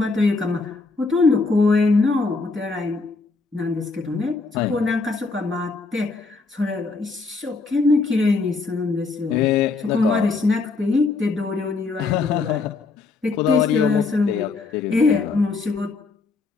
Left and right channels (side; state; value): right; quieter; 4.0 dB